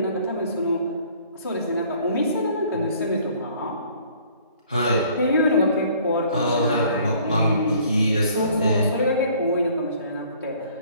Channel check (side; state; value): both; inverted; correlation -0.57